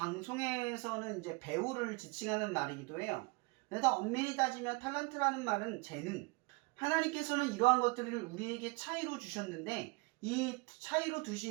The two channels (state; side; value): quieter; left; 28.1 dB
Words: 이제 배우를 지칭하는 말이기도 해요. 그래서 엄밀히 따지면 탤런트라는 말은 재능. 하나님께서는 이러한 것들을 우리에게 차이로 주셨는데 이 차이로